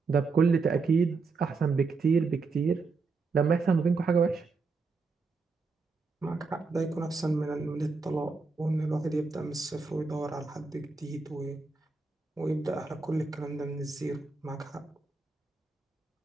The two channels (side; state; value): left; quieter; 4.3 dB